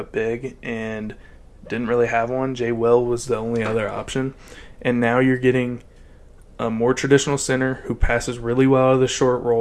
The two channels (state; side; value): identical; both; correlation 1.00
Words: big and didn't really have one. Jay Will was the only other option. And now you're getting a more traditional center who passes really well out of the short